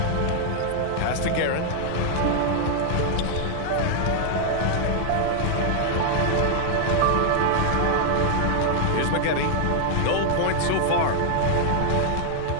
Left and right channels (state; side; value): different; both; correlation 0.00